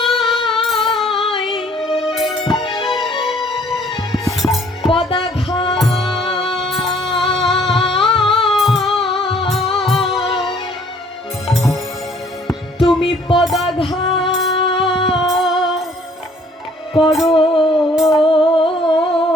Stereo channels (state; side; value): normal; both; correlation 0.59